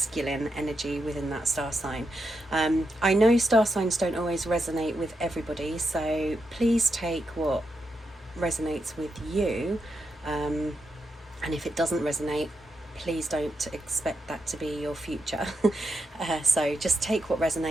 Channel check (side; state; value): both; normal; correlation 0.85